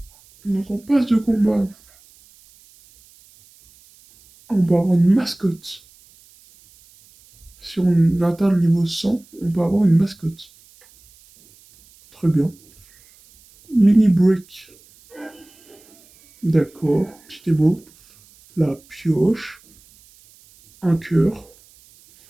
Donc en pass de combat, on va avoir une mascotte. Si on atteint le niveau 100, on peut avoir une mascotte. Très bien. Mini break. D'accord. Petit émo. La pioche. Un cœur.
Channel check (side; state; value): right; noise; hiss, 28 dB below the sound